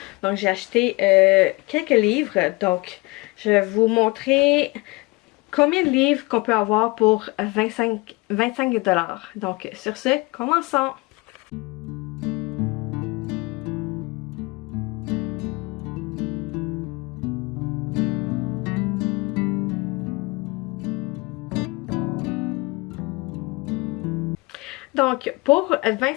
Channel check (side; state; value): right; quieter; 25.0 dB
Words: Donc, j'ai acheté quelques livres. Donc, je vais vous montrer combien de livres qu'on peut avoir pour 25 $. Donc, sur ce, commençons! Donc, pour